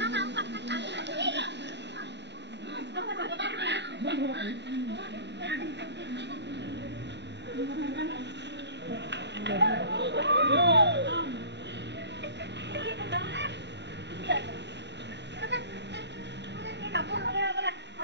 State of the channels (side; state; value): left; late; 0.51 ms